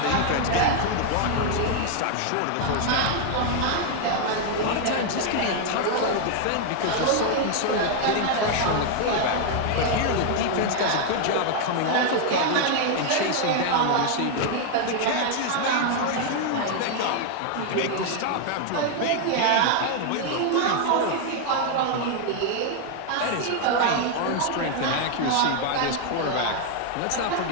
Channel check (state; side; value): different; both; correlation 0.00